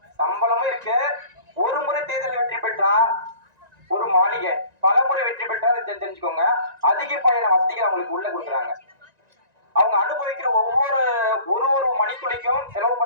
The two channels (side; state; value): left; late; 1.9 ms